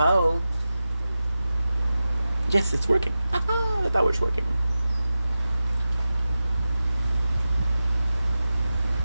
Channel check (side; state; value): both; inverted; correlation -0.94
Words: Yes, it's working. The tower's working.